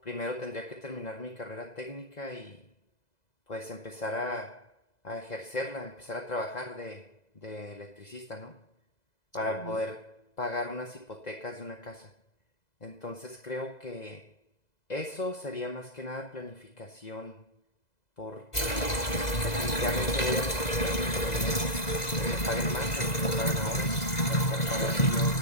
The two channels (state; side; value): late; right; 2.0 ms